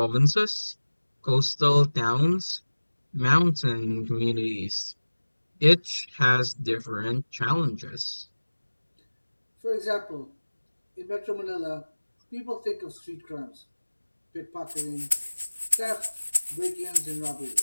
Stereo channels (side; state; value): both; inverted; correlation -1.00